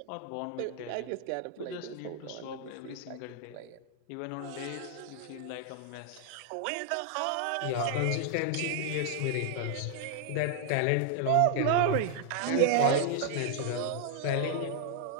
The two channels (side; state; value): both; different; correlation 0.00